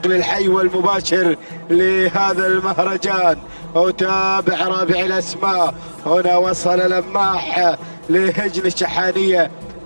الحي والمباشر لهذا المهرجان. أتابع رابع الأسماء، هنا وصل لماح لهجن الشحانية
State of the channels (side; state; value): both; inverted; correlation -1.00